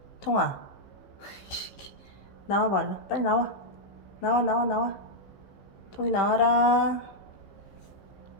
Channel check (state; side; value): late; right; 15 ms